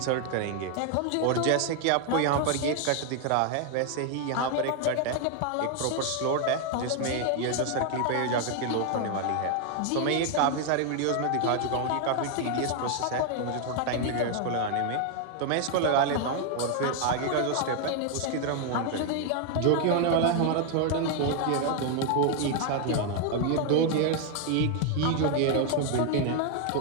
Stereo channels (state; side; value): different; both; correlation 0.01